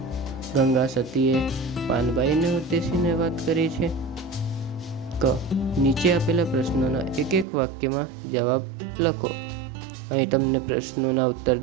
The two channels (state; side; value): drops out; left; at 7.5 s